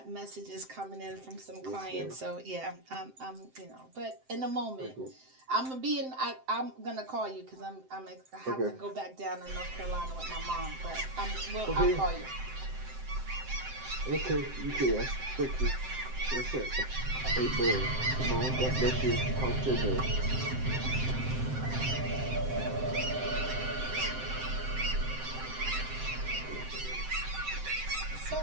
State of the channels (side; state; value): left; late; 7.7 ms